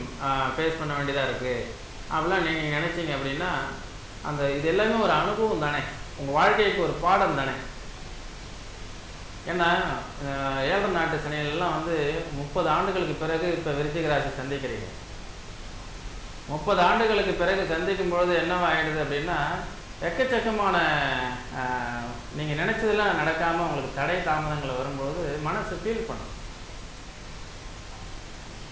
ஃபேஸ் பண்ண வேண்டியதாக இருக்குது. அப்படிலாம் நீங்கள் நினச்சிங்க அப்படின்னா அந்த இது எல்லாமே ஒரு அனுபவம் தானே, உங்கள் வாழ்க்கைக்கு ஒரு பாடம் தானே. ஏன்னா 7 நாட்டு சனியெல்லாம் வந்து 30 ஆண்டுகளுக்கு பிறகு இப்போ விருச்சிக ராசி சந்திக்கிறீங்க. 30 ஆண்டுகளுக்கு பிறகு சந்திக்கும் பொழுது என்னவாகிடுது அப்படின்னா எக்கச்சக்கமான நீங்கள் நினச்சதெல்லாம் நடக்காமல் உங்களுக்கு தடை தாமதங்கள் வரும்பொழுது மனசு ஃபீல் பண்ணும்.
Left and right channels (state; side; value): identical; both; correlation 1.00